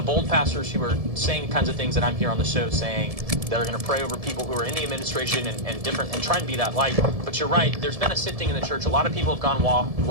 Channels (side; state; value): left; late; 1.7 ms